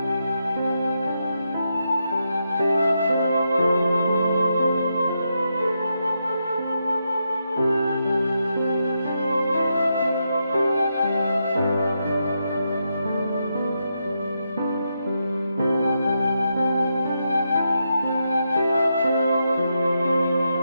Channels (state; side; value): inverted; both; correlation -0.83